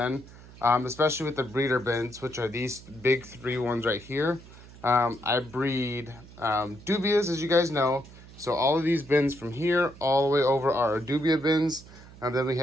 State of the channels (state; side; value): noise; right; hum, 20 dB below the sound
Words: especially with the breeder bins, which are these big 3 ones right here. I breed Dubias, as you guys know. So all of these bins from here all the way over are our Dubia bins. And then we